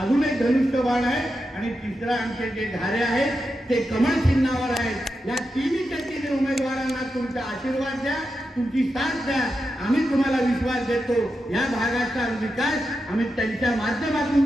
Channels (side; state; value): both; normal; correlation 0.88